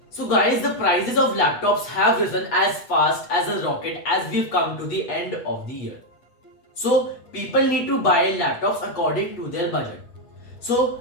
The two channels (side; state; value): right; late; 8.1 ms